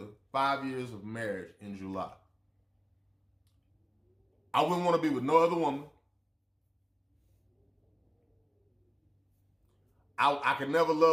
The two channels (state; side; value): identical; both; correlation 1.00